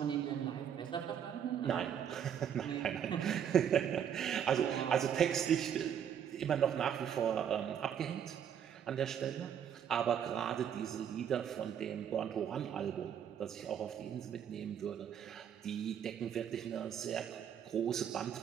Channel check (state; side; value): quieter; left; 8.8 dB